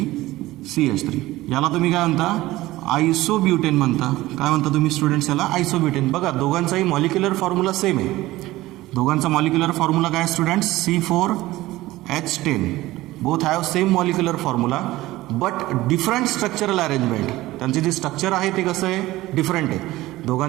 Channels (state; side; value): quieter; left; 17.6 dB